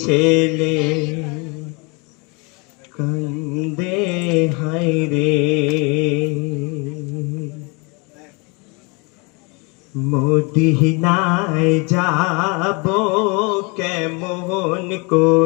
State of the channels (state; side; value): quieter; right; 30.2 dB